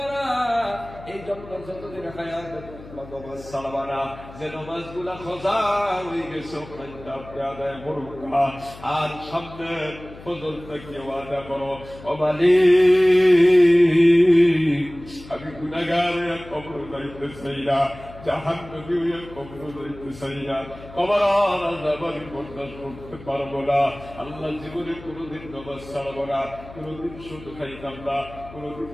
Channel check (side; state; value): left; noise; hum, 17 dB below the sound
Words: এই জন্য যতদিন হায়াত নামাজ ছাড়বা না। যে নামাজ গুলা খোঁজা হয়ে গেছে আপনি আদায় করুন। আর সামনে ফজর থেকে ওয়াদা করো, ও মালিক, আমি গুনাহগার কবর যাইতে চাই না, জাহান্নামী হয়ে কবর যাইতে চাই না, কবর আযাব আমি বরদাস্ত করতে পারবো না। আল্লাহ, জীবনে কোনোদিন নামাজ ছাড়বো না, কোনোদিন সুদ খাইতাম না, কোনোদিন